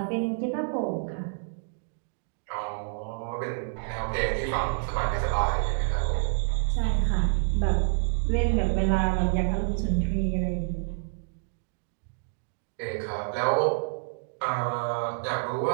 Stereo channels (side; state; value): left; silent; digital silence